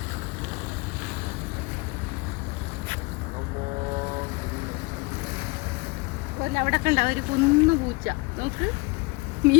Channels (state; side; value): quieter; right; 25.9 dB